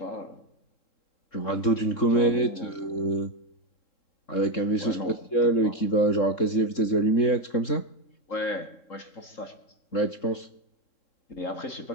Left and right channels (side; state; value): right; late; 3.7 ms